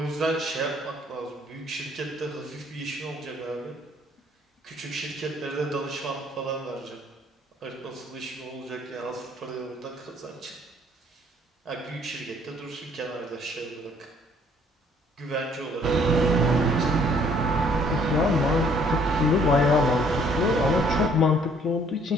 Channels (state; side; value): normal; both; correlation 0.61